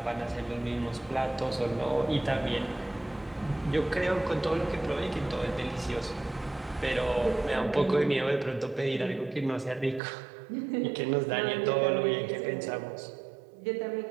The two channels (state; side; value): drops out; left; at 10.0 s